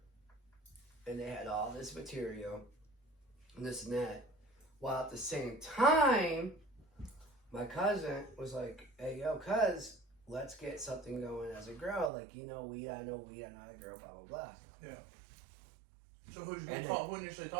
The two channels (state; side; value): drops out; left; at 12.1 s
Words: And they had all this material and this and that. While at the same time, my cousin was like, hey, yo, cuz, let's get something going as a grow. Like, you know weed, I know weed, I know a girl, blah, blah, blah. Yeah. So who initially